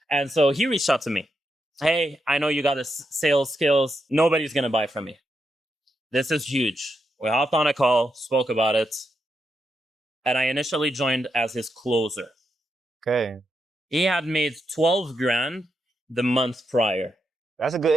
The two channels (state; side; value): normal; both; correlation 0.84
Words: And so he reached out to me. Hey, I know you got the sales skills. Nobody's going to buy from me. This is huge. We hopped on a call, spoke about it. And I initially joined as his closer. Okay. He had made 12 grand the month prior. That's a good